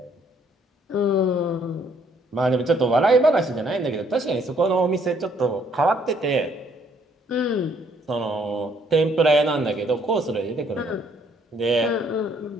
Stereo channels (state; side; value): normal; both; correlation 0.66